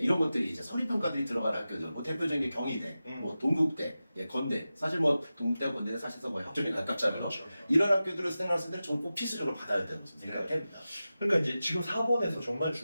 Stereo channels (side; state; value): both; inverted; correlation -0.94